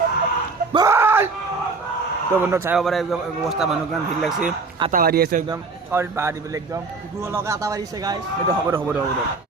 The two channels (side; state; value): left; quieter; 4.1 dB